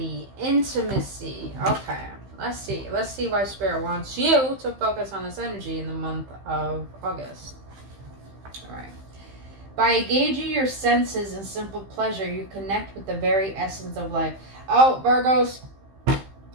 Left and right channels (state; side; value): late; left; 15 ms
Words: intimacy. Okay, let's see why Spirit wants you to focus on this energy in the month of August. All right. By engaging your senses in simple pleasure, you connect with the very essence of life. Oh, Virgos, I